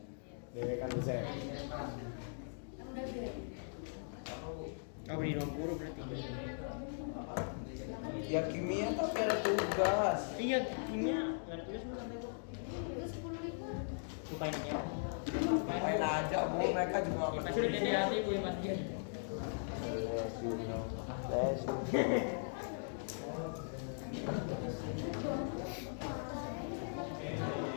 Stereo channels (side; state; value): right; silent; digital silence